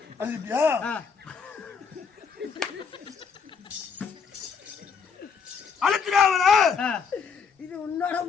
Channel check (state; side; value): quieter; right; 6.1 dB